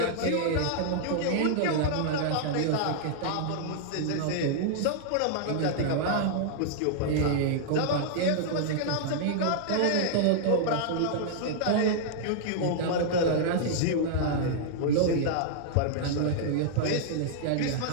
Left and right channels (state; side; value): different; both; correlation -0.01